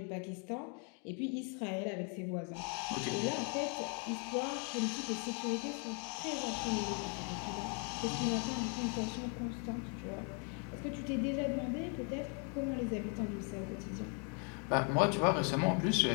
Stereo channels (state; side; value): quieter; right; 38.4 dB